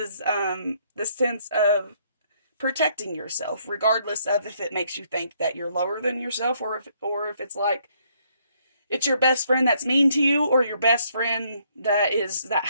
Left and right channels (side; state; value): both; inverted; correlation -0.69